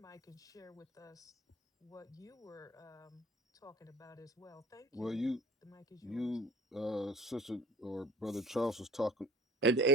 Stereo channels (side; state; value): both; normal; correlation 0.43